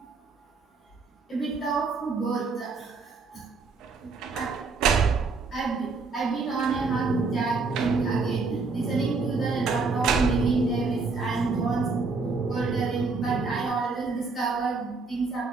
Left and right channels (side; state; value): left; quieter; 4.2 dB